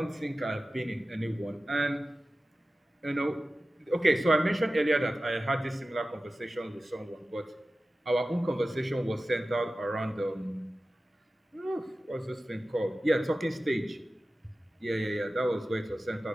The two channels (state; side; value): normal; both; correlation 0.95